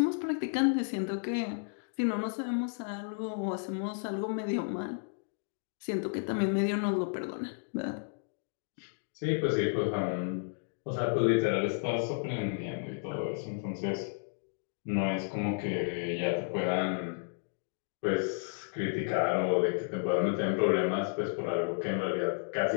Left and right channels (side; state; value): right; silent; digital silence